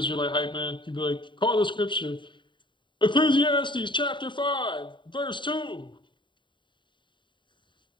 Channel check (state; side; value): late; right; 0.23 ms